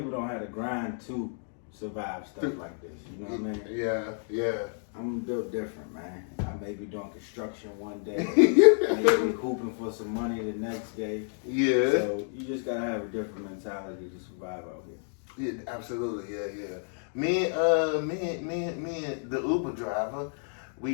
don't have the grind to survive stuff like this. You know what I mean? Yeah, yeah. I'm built different, man. I may be doing construction one day, maybe hooping for some money the next day. Yeah. So you just gotta have a different mentality to survive out here. Yeah, absolutely. Yeah, yeah. Me and the Uber driver,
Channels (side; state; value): right; silent; 58 dB below the other